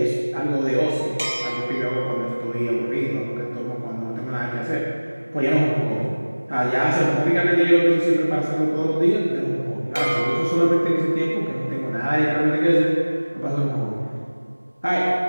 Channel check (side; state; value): both; inverted; correlation -1.00